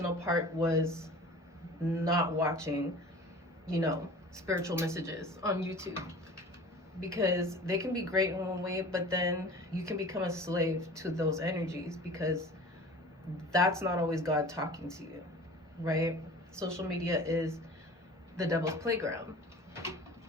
part was not watching, spiritual messages on YouTube, because they can be great in one way, but then you can become a slave to those energies, because that's not always God talking to you, right? Social media is the devil's playground.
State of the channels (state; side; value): normal; both; correlation 0.41